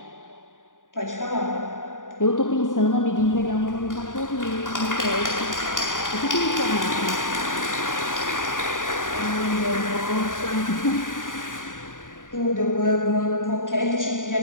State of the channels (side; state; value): right; late; 0.88 ms